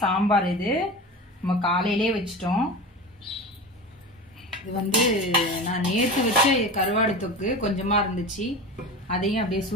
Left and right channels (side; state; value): both; normal; correlation 0.30